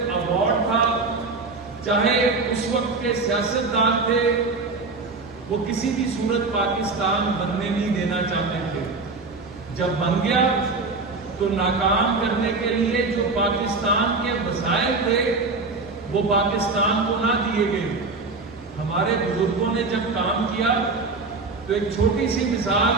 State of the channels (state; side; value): quieter; left; 3.8 dB